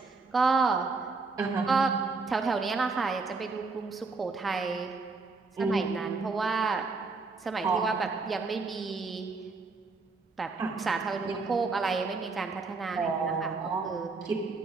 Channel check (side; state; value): left; quieter; 4.2 dB